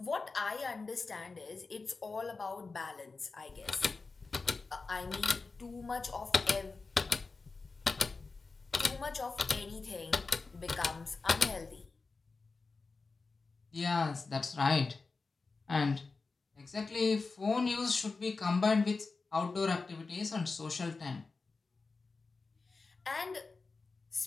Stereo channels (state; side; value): quieter; right; 4.1 dB